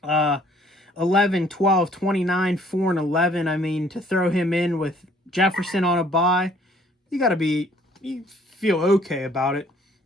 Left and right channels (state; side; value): normal; both; correlation 0.59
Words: 11, 12, 29, 4, and 11. I mean, to throw him in with Jefferson on a bye, you feel okay about it.